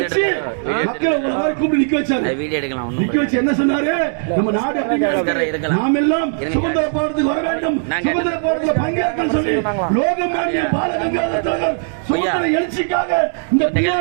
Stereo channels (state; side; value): silent; left; digital silence